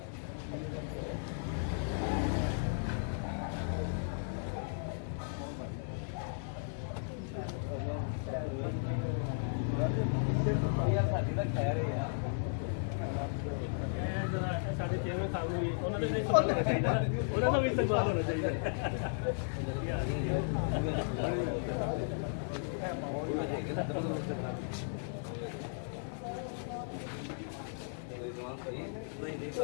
ਸਾਡੇ ਚੇਅਰਮੈਨ ਸਾਹਿਬ ਨੂੰ ਵੀ ਉਹਨਾਂ ਦੇ ਸਵਾਲ ਹੋਣਾ ਚਾਹੀਦਾ, ਉਹਨਾਂ ਦਾ ਵੀ ਸਵਾਲ ਹੋਣਾ ਚਾਹੀਦਾ.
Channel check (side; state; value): right; silent; 54 dB below the other